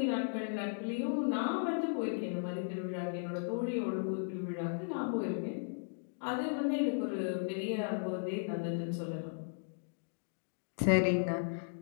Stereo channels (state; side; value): silent; right; digital silence